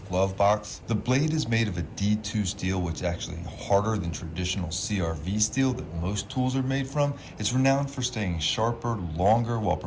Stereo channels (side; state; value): both; identical; correlation 1.00